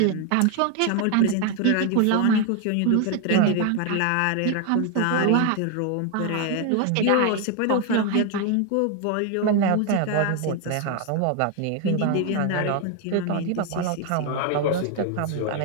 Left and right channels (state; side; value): different; both; correlation 0.01